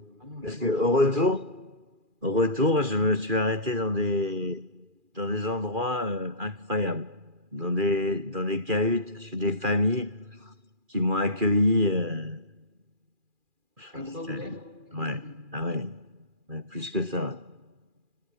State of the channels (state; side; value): late; left; 2.4 ms